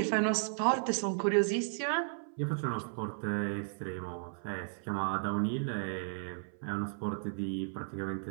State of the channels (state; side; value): silent; left; 55 dB below the other